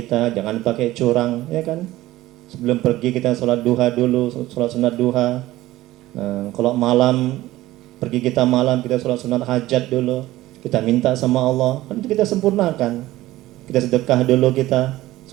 jangan pakai curang, ya kan? Sebelum pergi kita sholat duha dulu, sholat sunat duha. Nah, kalau malam, pergi kita malam, kita sholat sunat hajat dulu, kita minta sama Allah, kan itu kita sempurnakan. Kita sedekah dulu kita,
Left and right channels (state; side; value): quieter; left; 16.6 dB